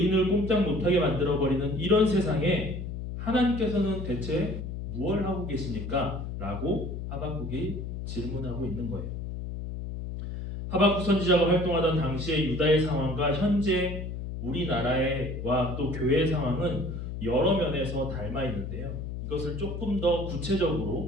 꼼짝 못하게 만들어버리는 이런 세상에 하나님께서는 대체 무엇을 하고 계십니까? 라고 하박국이 질문하고 있는 거예요. 하박국 선지자가 활동하던 당시의 유다의 상황과 현재 우리나라와 또 교회의 상황은 여러 면에서 닮아 있는데요. 이것을 조금 더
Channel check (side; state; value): left; noise; hum, 6 dB below the sound